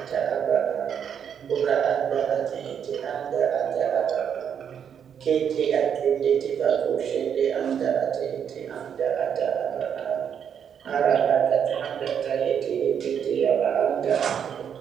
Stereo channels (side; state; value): left; quieter; 8.1 dB